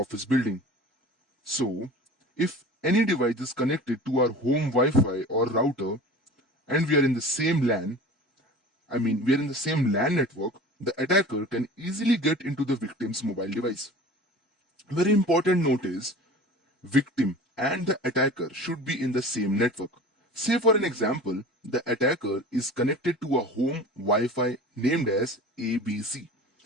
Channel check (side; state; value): both; normal; correlation 0.39